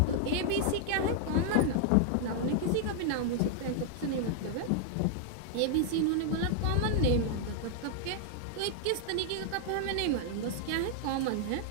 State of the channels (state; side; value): different; both; correlation 0.00